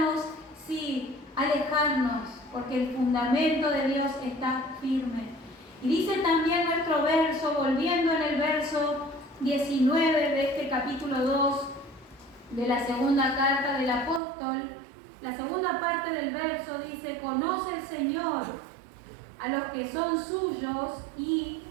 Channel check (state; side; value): drops out; left; at 14.2 s